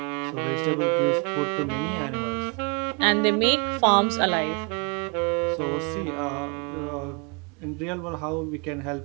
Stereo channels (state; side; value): quieter; left; 34.1 dB